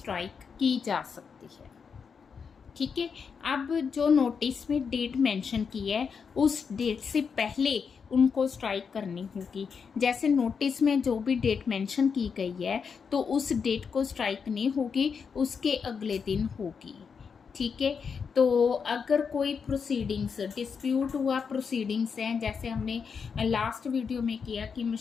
की जा सकती है। ठीक है, अब जो नोटिस में डेट मेंशन की है उस डेट से पहले उनको स्ट्राइक करनी होगी। जैसे नोटिस में जो भी डेट मेंशन की गई है तो उस डेट को स्ट्राइक नहीं होगी, उसके अगले दिन होगी। ठीक है, तो अगर कोई प्रोसीडिंग्स डिस्प्यूट हुआ, प्रोसीडिंग्स हैं, जैसे हमने लास्ट वीडियो में किया कि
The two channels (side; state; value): right; quieter; 6.1 dB